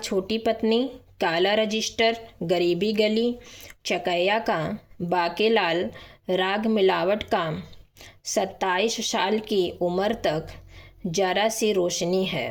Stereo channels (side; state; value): both; identical; correlation 1.00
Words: पत्नी, काला रजिस्टर, गरीबी गली, चकैया का, बाकेलाल, राग मिलावट का, 27 साल की उम्र तक जरा सी रोशनी